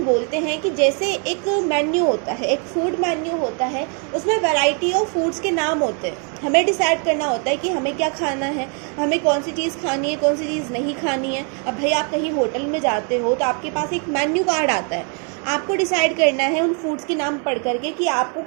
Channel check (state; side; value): quieter; left; 39.1 dB